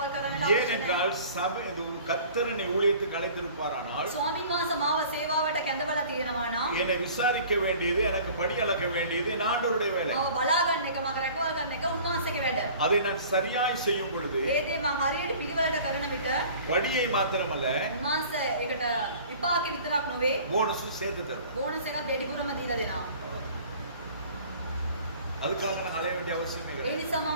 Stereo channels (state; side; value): inverted; both; correlation -0.47